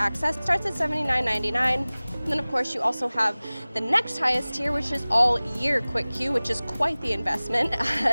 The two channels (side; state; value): both; inverted; correlation -0.99